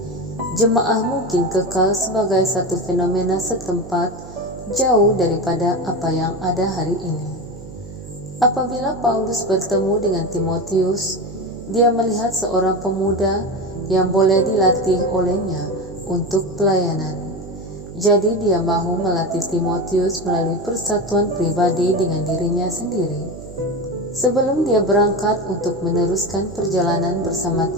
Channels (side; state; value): right; noise; hum, 14 dB below the sound